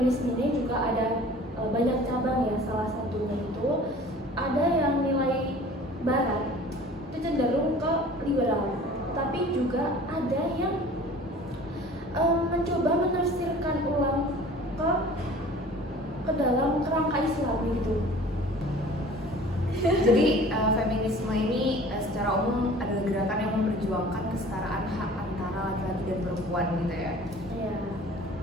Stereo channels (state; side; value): normal; both; correlation 0.46